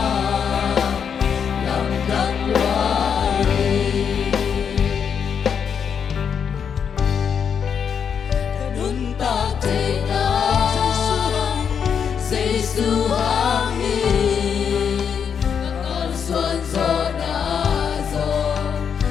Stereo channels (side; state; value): right; quieter; 7.2 dB